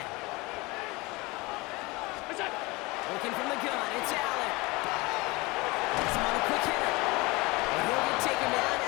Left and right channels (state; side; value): quieter; right; 23.8 dB